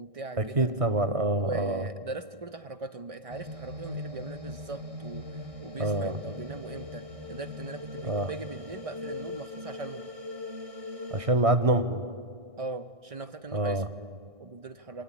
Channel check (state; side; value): late; left; 1.6 ms